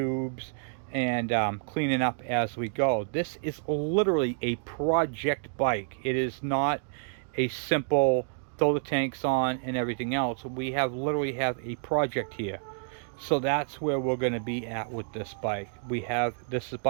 and cleaning up as we go. This is literally a project bike. It is not a simple throw the tanks on and everything else. We literally have a project here. So that's where we're going to be at with this bike. This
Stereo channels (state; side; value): silent; left; digital silence